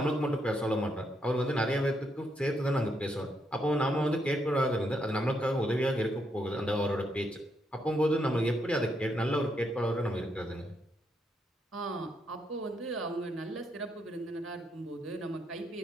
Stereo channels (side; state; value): both; normal; correlation 0.78